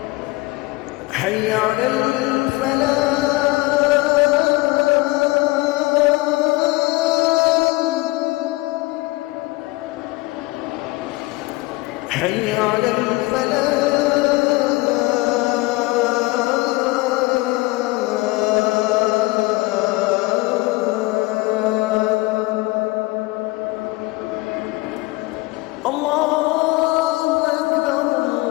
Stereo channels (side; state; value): right; quieter; 21.9 dB